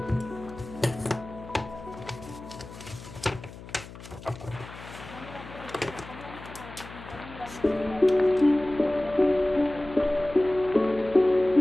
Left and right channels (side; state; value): left; noise; hum, 15 dB below the sound